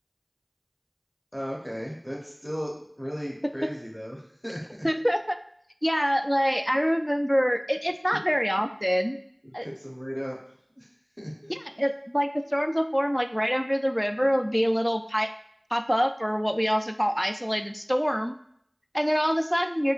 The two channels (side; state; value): both; identical; correlation 1.00